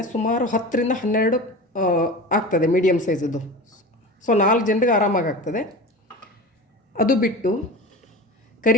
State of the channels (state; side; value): normal; both; correlation 0.31